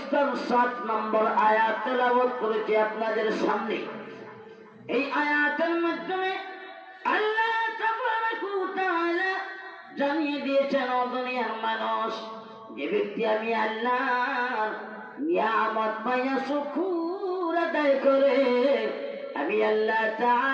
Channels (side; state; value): both; identical; correlation 1.00